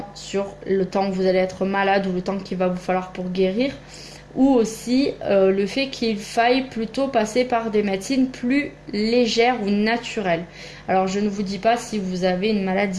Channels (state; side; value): identical; both; correlation 1.00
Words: sur le temps où vous allez être malade ou le temps qu'il va vous falloir pour guérir, ou aussi le fait qu'il faille plutôt passer par des médecines plus légères ou naturelles. Alors je ne vous dis pas, si vous avez une